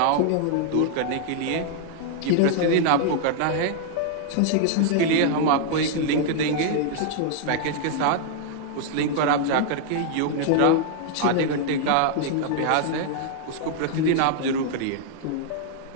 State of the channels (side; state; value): both; different; correlation -0.01